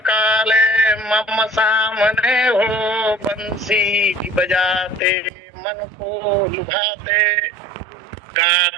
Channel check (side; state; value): left; drops out; at 5.3 s